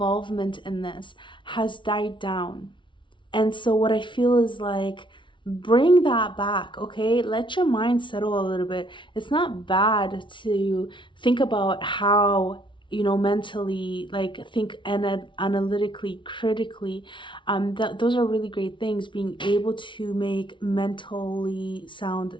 in this has died down. And so what I feel is like, bring that back, okay? Let your mind settle a little bit. It's not bad to think about how, mentally, like think analytically, critically. Those are really great things, being able to make mentally sound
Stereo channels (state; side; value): late; right; 0.24 ms